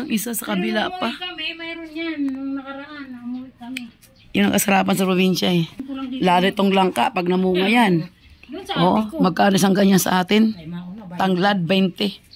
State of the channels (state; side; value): identical; both; correlation 1.00